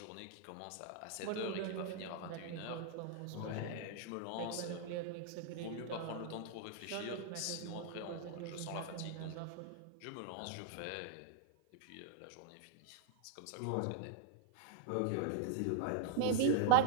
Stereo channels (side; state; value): both; different; correlation -0.01